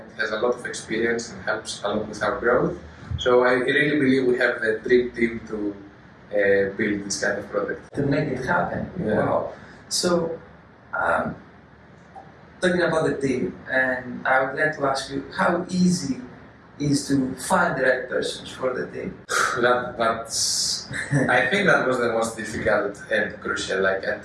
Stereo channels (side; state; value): both; identical; correlation 1.00